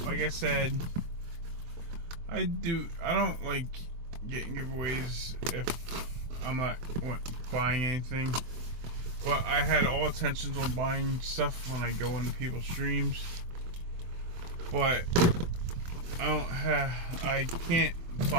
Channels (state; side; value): late; left; 24 ms